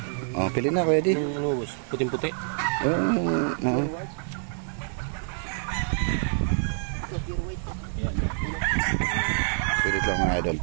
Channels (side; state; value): left; silent; digital silence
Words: Oh, pili na kuya di. Ano, boss? Puting-puti. Pilit lang mga idol,